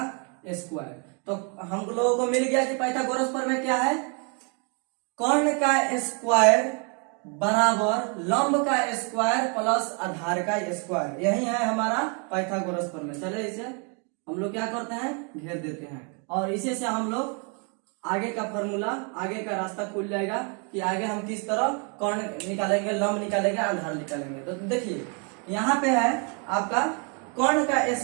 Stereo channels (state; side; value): quieter; left; 37.3 dB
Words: स्क्वायर। तो हम लोगों को मिल गया कि पाइथागोरस प्रमेय क्या है, कर्ण का स्क्वायर बराबर लंब का स्क्वायर प्लस आधार का स्क्वायर, यही है हमारा पाइथागोरस प्रमेय। चले इसे हम लोग क्या करते हैं, घेर देते हैं, और इसे से हम लोग आगे का फॉर्मूला, आगे का रास्ता खुल जाएगा कि आगे हम किस तरह कर्ण निकालेंगे, लंब निकालेंगे, आधार निकालेंगे। तो देखिए यहाँ पे है आपका कर्ण का